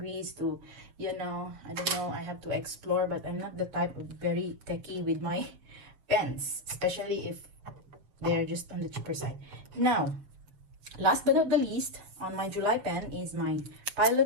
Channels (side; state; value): left; late; 6.9 ms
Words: to, you know, I don't know, I have to explore. But I'm not the type of very techie with my pens, especially if they're just on the cheaper side. Now, last but not the least, on my July pen is my